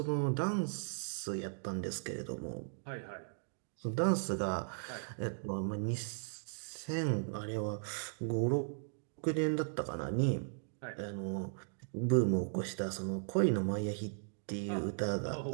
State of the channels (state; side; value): silent; left; digital silence